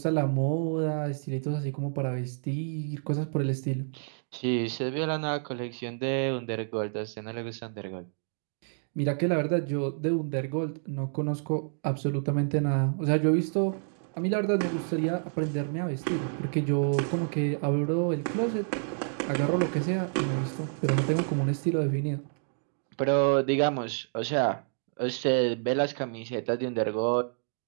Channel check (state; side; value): silent; left; digital silence